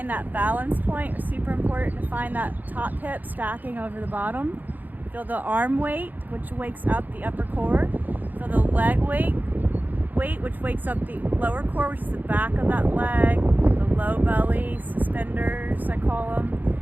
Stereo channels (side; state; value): left; late; 0.084 ms